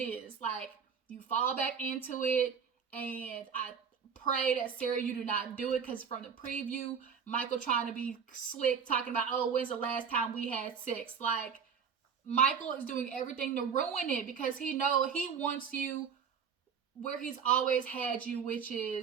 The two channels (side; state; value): left; quieter; 6.7 dB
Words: is. Like, you fall back into it, and I pray that, Sarah, you do not do it, because from the preview, Michael trying to be slick, talking about, oh, when's the last time we had sex? Like, Michael is doing everything to ruin it, because he wants you where he's always had you, which